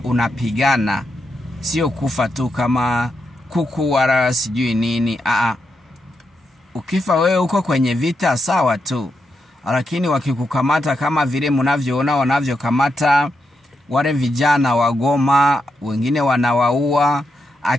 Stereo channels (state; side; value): normal; both; correlation 0.84